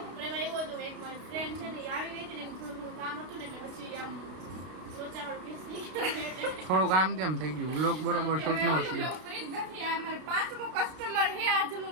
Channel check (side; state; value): left; late; 32 ms